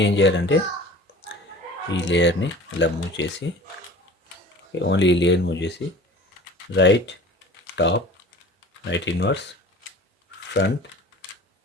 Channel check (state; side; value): normal; both; correlation 0.42